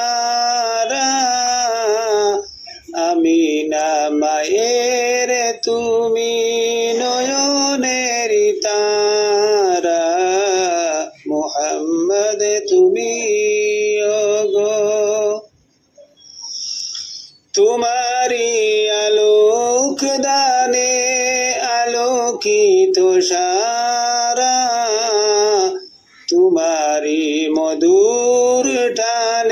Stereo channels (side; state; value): both; identical; correlation 1.00